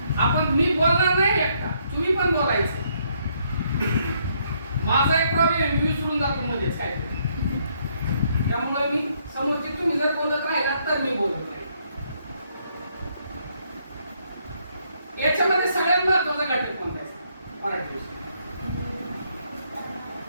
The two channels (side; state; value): both; inverted; correlation -0.71